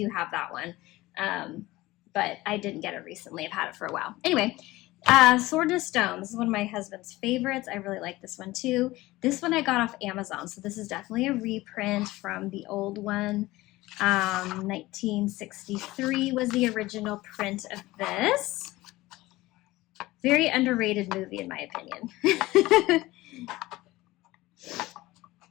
have that one. But I didn't get it recently. I've had it for a while. Anyway, Sword and Stone. This is one of my husband's favorites. I really like this one too. This one I got off Amazon, so this is definitely a reprint from the old one. 1963 was the original print of this. Very underrated movie in my opinion.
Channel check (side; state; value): right; quieter; 18.7 dB